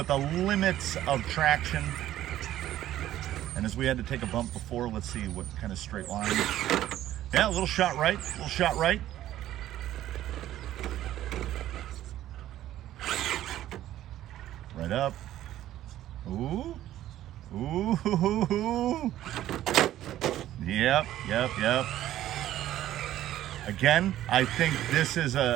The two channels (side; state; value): left; quieter; 13.2 dB